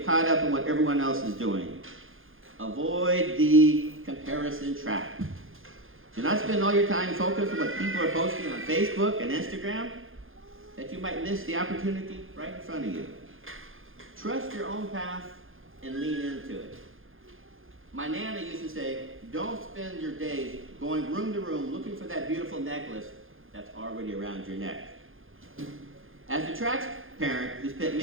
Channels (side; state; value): left; late; 0.59 ms